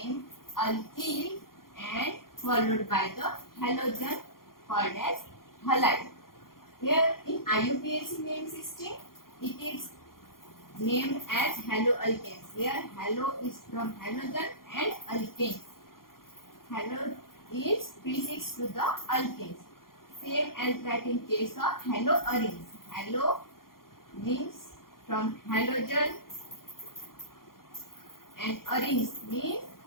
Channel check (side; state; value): right; late; 0.92 ms